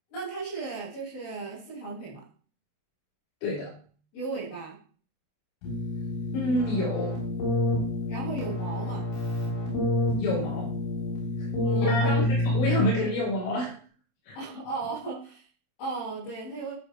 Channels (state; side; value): late; right; 27 ms